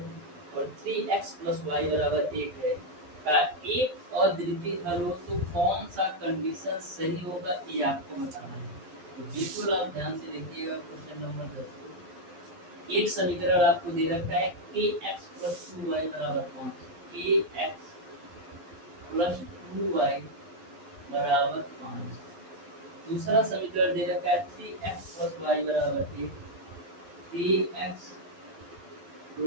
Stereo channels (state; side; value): late; left; 12 ms